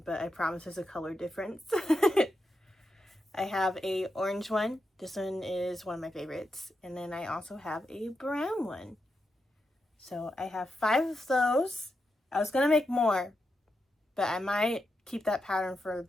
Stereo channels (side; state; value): both; normal; correlation 0.86